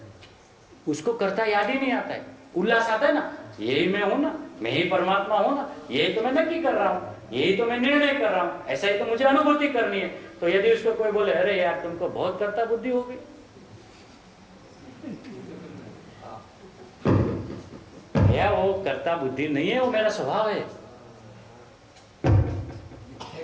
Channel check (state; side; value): identical; both; correlation 1.00